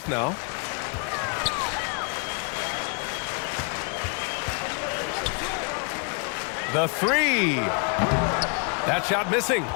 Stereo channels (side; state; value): right; quieter; 38.1 dB